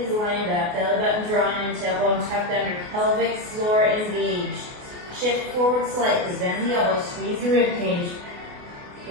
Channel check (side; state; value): left; late; 28 ms